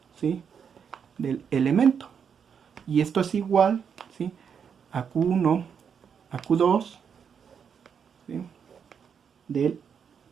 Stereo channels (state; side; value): quieter; left; 7.1 dB